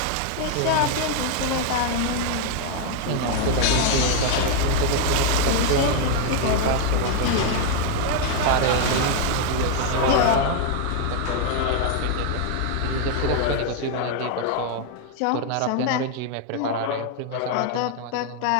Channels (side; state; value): both; different; correlation 0.00